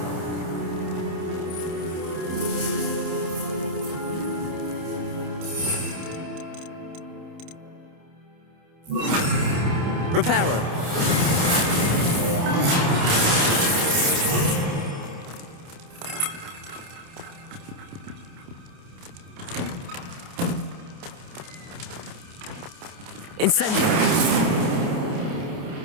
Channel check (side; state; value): left; late; 28 ms